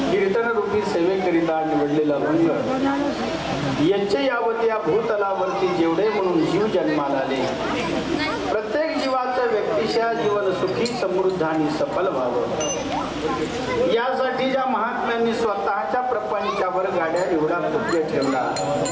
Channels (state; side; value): identical; both; correlation 1.00